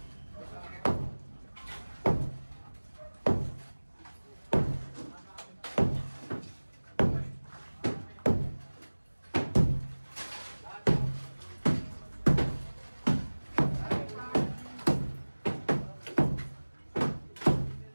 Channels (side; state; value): both; inverted; correlation -1.00